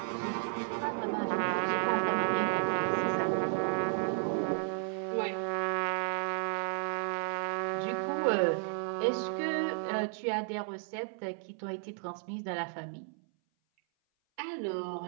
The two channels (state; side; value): silent; left; 56 dB below the other